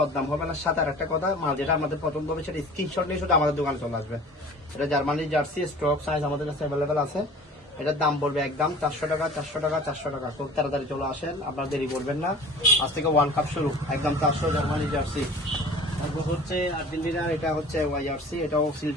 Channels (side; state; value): both; normal; correlation 0.43